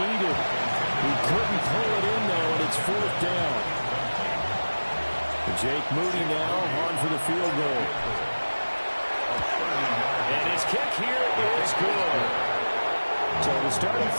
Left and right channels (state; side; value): inverted; both; correlation -1.00